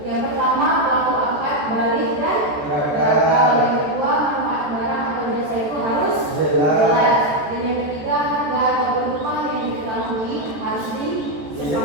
Yang pertama pelaku akad balik dan gagal. Yang kedua manfaat barang atau jasa itu harus jelas. Dan yang ketiga harga ataupun upah yang diketahui harus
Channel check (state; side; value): late; left; 14 ms